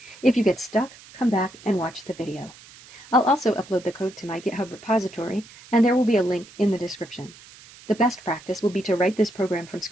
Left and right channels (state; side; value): noise; right; hiss, 21 dB below the sound